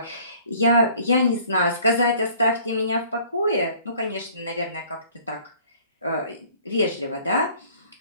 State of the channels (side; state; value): both; inverted; correlation -0.54